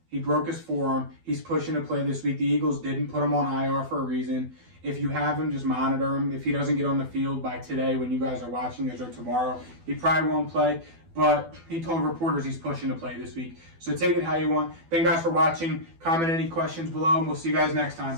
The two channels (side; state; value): left; late; 12 ms